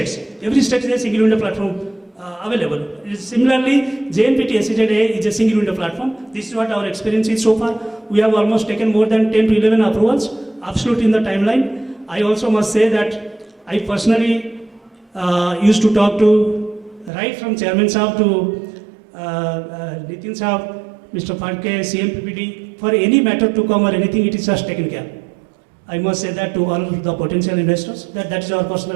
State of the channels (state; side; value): drops out; left; at 17.1 s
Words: Every state is a single window platform available. Similarly, JNPT SEZ is a single window platform. This is what our experience is so far. We have almost taken more than 10 to 11 approvals, absolutely in the timeline. I also must say that I personally used to talk to, right from Chairman Saab to Nitin Saab, Mr. Parke, CMPPD, for any matter to come or anything, it is just taken care. I must say that to all the potential investors, that is our